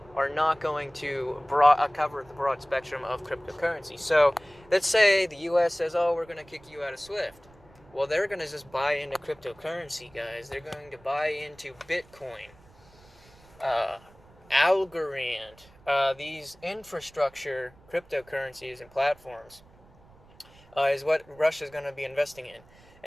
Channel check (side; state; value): right; noise; rumble, 26 dB below the sound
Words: are not going to cover the broad spectrum of cryptocurrency. So let's say the U.S. says, "Oh, we're going to kick you out of Swift." Well, they're going to just buy into cryptocurrency, guys. They're going to buy into Bitcoin, Algorand, these infrastructure cryptocurrencies and platforms is what Russia's going to be investing in.